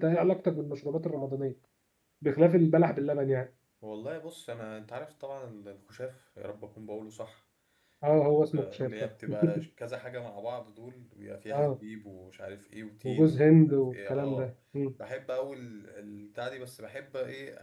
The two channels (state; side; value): identical; both; correlation 1.00